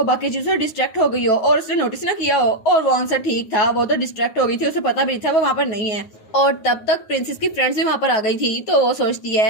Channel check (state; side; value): late; right; 9.5 ms